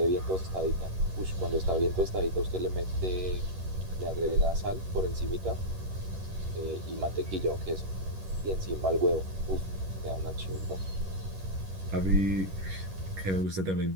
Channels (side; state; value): left; late; 11 ms